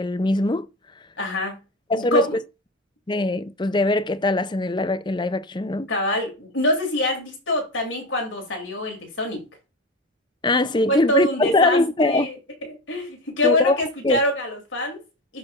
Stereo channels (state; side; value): normal; both; correlation 0.24